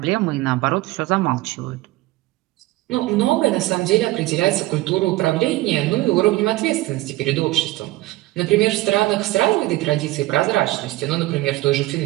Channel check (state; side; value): quieter; left; 18.1 dB